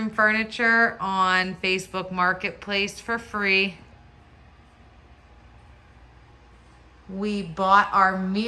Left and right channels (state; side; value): identical; both; correlation 1.00